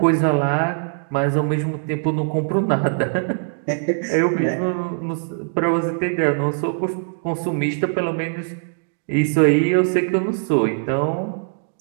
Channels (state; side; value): silent; left; digital silence